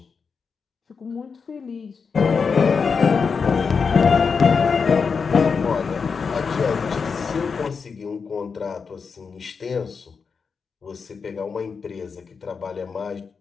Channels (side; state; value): right; quieter; 5.5 dB